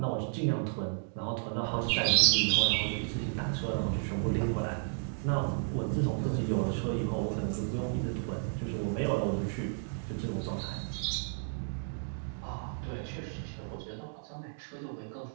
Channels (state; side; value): silent; left; digital silence